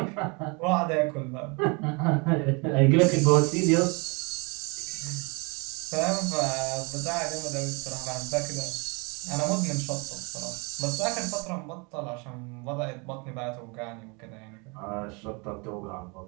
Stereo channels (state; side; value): quieter; left; 30.4 dB